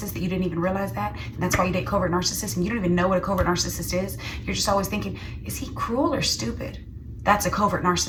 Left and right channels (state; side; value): identical; both; correlation 1.00